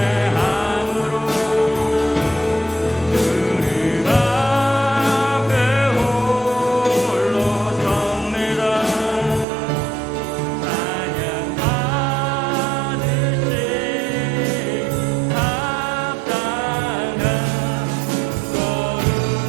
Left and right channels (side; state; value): left; drops out; at 9.5 s